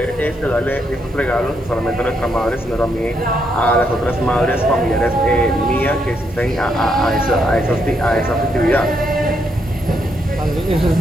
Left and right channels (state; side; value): normal; both; correlation 0.77